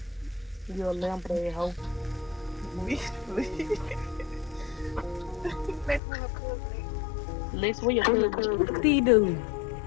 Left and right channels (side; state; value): right; drops out; at 6.0 s